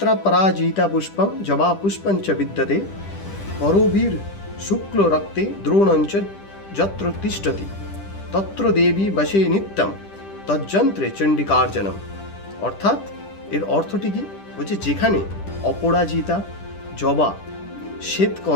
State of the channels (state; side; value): late; right; 10 ms